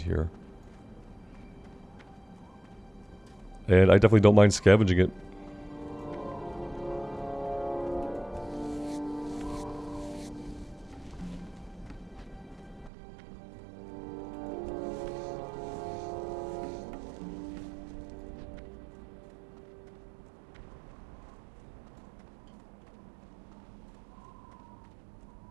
here. And I definitely don't mind scavenging it.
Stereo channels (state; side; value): drops out; left; at 12.9 s